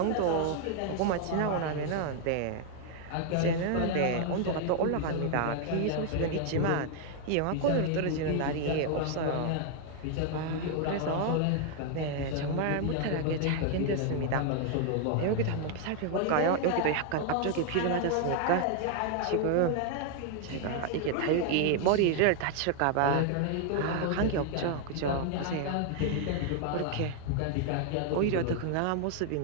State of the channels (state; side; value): different; both; correlation 0.00